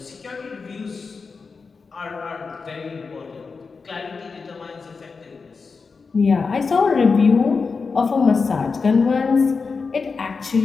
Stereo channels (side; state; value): right; quieter; 4.8 dB